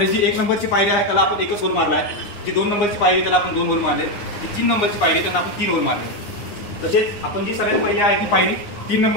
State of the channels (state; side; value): late; right; 9.7 ms